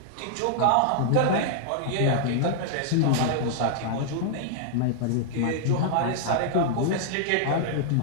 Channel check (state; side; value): different; both; correlation -0.01